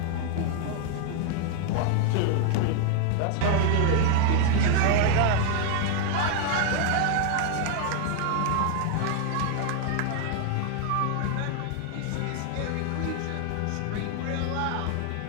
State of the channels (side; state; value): both; different; correlation 0.00